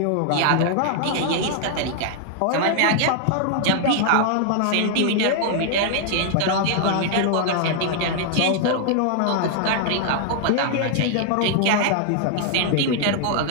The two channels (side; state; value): both; different; correlation 0.00